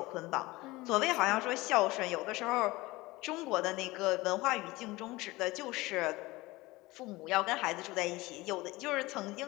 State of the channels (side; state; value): right; quieter; 20.7 dB